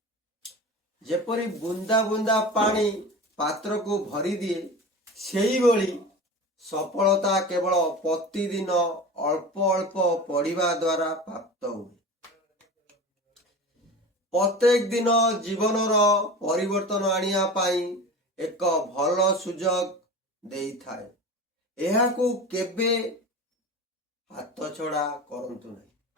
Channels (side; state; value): both; normal; correlation 0.32